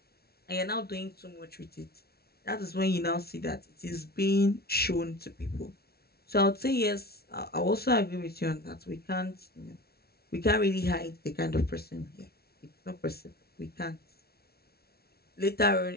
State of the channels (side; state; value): right; late; 0.45 ms